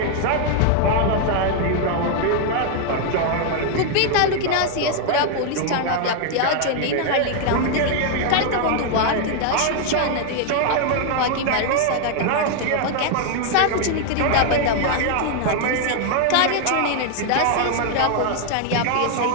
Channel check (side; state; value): both; different; correlation 0.00